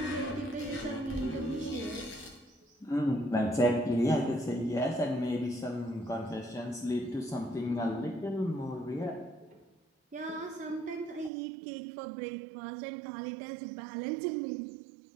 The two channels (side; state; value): left; drops out; at 11.3 s